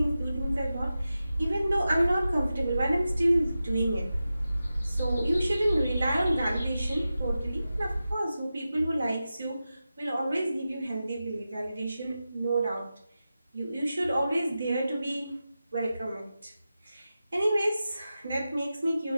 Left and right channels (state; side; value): inverted; both; correlation -0.93